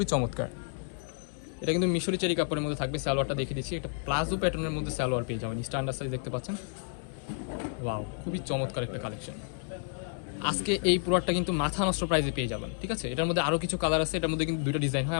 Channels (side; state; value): right; silent; 57 dB below the other